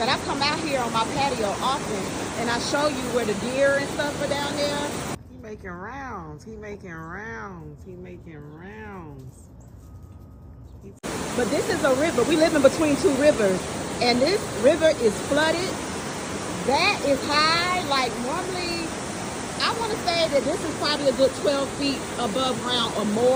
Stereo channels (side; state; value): both; identical; correlation 1.00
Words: I come out here on my patio often and I show you where the deer and stuff are down there. He making rounds. He making rounds. He making rounds. But this is a river. We live in between two rivers, and this river is flooded. That is high. Like normally, I want to say that this is probably a good 12 feet above ground or